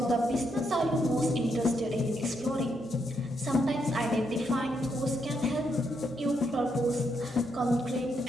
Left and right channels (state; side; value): normal; both; correlation 0.79